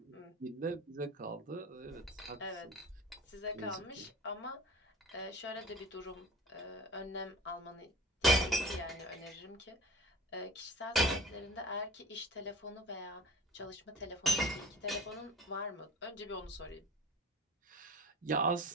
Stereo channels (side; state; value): both; normal; correlation 0.40